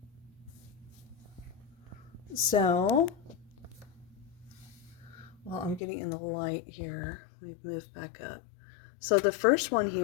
So, well, I'm getting in the light here. Let me move back up. So the first one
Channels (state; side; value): drops out; right; at 5.8 s